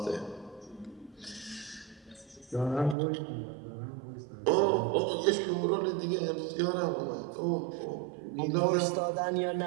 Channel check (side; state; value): left; drops out; at 3.0 s